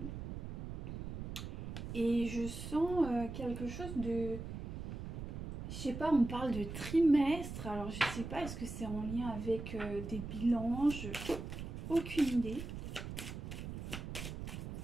Et je sens quelque chose de... Je sais pas, on parle de trimestre. Alors, je sais pas, est-ce que c'est en lien avec des bilans? Aucune idée.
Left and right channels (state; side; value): noise; right; rumble, 7 dB below the sound